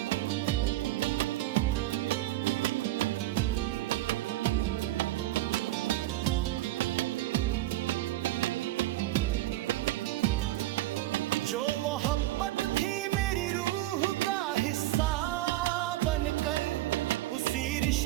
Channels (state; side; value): quieter; left; 16.1 dB